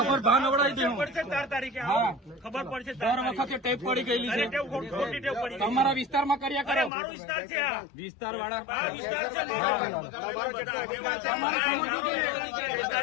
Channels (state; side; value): drops out; right; at 6.9 s